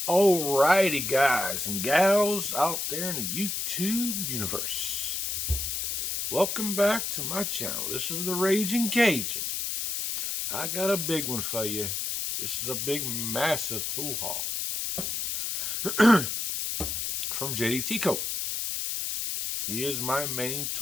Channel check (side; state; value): left; noise; hiss, 2 dB below the sound